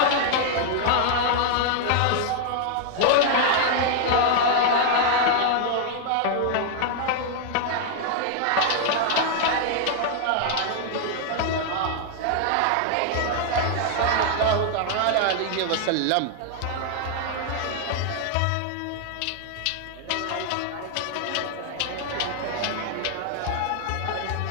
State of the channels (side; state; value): both; different; correlation 0.00